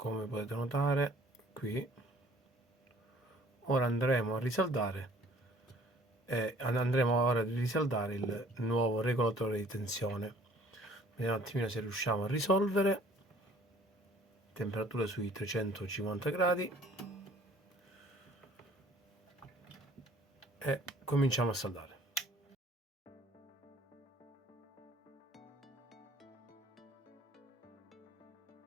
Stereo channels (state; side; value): normal; both; correlation 0.55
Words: potete notare qui. Ora andremo a risaldare il nuovo regolatore di tensione. Vediamo un attimino se riusciamo a risolvere. Temperatura sui 350 gradi e cominciamo a saldare.